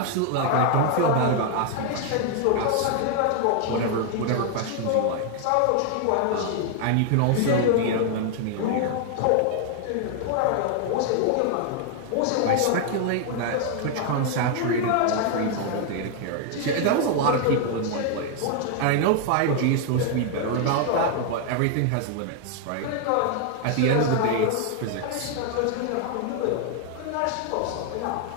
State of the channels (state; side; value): different; both; correlation 0.00